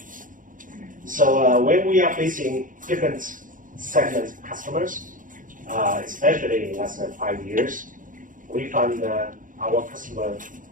So when we are facing different segment customers, especially in the last 5 years, we found our customer,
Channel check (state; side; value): late; left; 0.39 ms